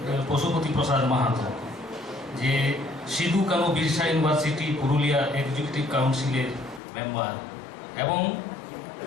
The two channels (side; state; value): right; drops out; at 6.8 s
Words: পশুপতি প্রসাদ মাহাতো যে সিধু কানু বিরসা ইউনিভার্সিটি পুরুলিয়া এক্সিকিউটিভ কাউন্সিলের মেম্বার এবং